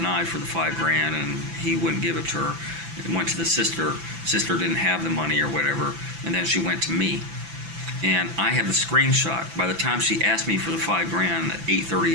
for the $5,000, and he wouldn't give it to her. It went to the sister didn't have the money or whatever, and then she went to me. And I have the screenshot. By the time she asked me for the $5,000 at 8:30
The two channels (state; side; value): late; left; 6.0 ms